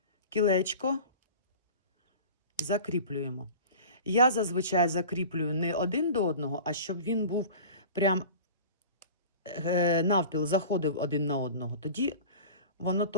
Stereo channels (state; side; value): inverted; both; correlation -0.38